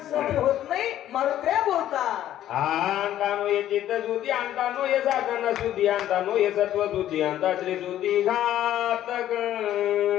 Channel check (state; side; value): quieter; right; 12.2 dB